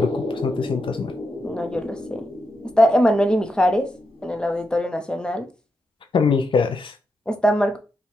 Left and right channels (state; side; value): normal; both; correlation 0.85